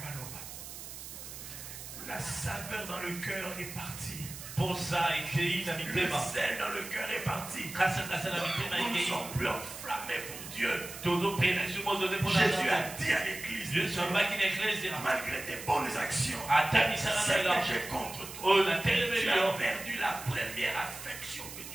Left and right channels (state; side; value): noise; right; hiss, 11 dB below the sound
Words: La saveur dans le cœur est partie. Le sel dans le cœur est parti. Nous ne sommes plus enflammés pour Dieu. Jésus a dit à l'église, malgré tes bonnes actions, c'est que j'ai contre toi. Tu as perdu la première affection que